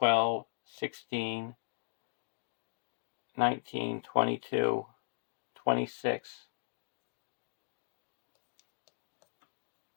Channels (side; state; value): right; silent; digital silence